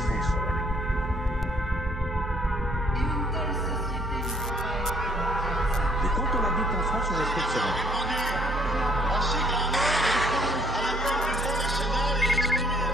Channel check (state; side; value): normal; both; correlation 0.63